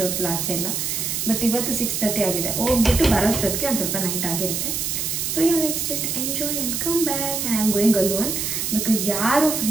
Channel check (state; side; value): noise; right; hiss, 1 dB below the sound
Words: ಹೊತ್ತು ಆಚೆ ಎಲ್ಲ. ಬಟ್ ಇವತ್ತು 6:30 ಆಗಿದೆ, ಹೋಗ್ಬಿಟ್ಟು ಬರೋಷ್ಟೊತ್ತಿಗೆ ಒಂದು ಸ್ವಲ್ಪ ನೈಟ್ ಆಗಿರುತ್ತೆ. So yeah, let's just enjoy and come back. And I'm going alone because ಯಾರು